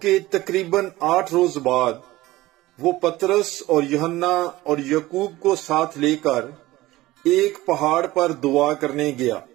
کے تقریباً 8 روز بعد وہ پطرس اور یوحنا اور یعقوب کو ساتھ لے کر ایک پہاڑ پر دعا کرنے گیا،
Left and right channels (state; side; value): quieter; left; 17.8 dB